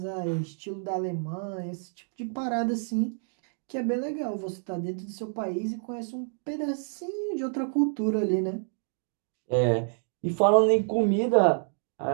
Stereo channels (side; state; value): left; silent; 59 dB below the other